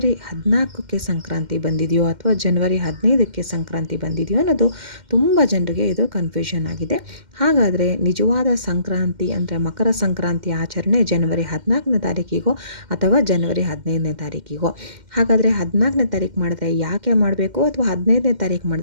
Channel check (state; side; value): late; left; 2.1 ms